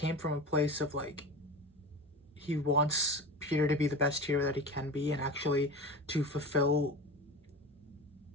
from a place of like, he wants Peter to be the best hero that he can be, and actually to fulfill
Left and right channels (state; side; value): normal; both; correlation 0.30